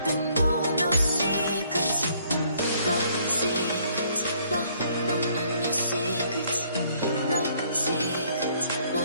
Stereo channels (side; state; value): both; inverted; correlation -0.64